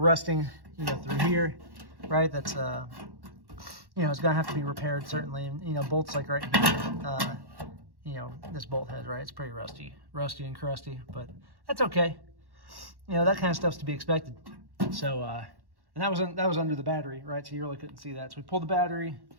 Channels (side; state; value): left; late; 1.1 ms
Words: through here, right? That's it's gonna have to be repaired certainly, and bolts like right here, this bolt head, right? It's pretty rusty and crusty, but that's okay. That kind of stuff's to be expected. So, and that was under the battery, right? So you really couldn't see that. So we pulled the battery,